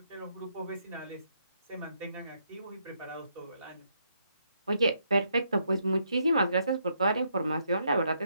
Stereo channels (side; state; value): both; inverted; correlation -0.75